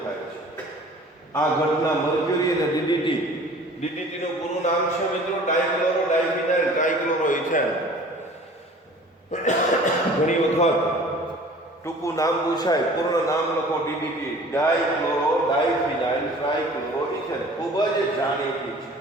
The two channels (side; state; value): both; normal; correlation 0.47